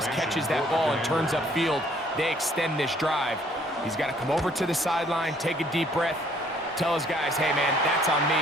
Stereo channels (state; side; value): normal; both; correlation 0.62